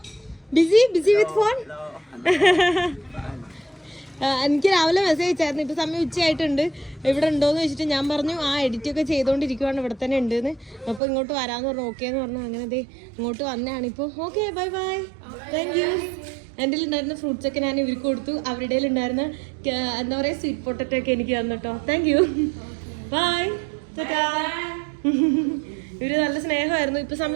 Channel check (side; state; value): left; drops out; at 11.0 s